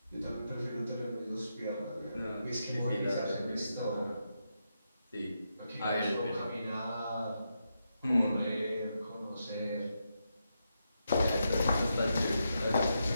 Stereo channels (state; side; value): inverted; both; correlation -0.84